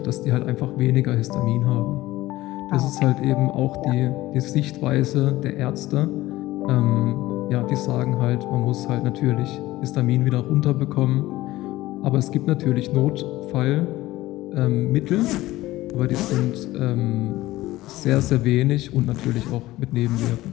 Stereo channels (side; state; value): right; quieter; 17.3 dB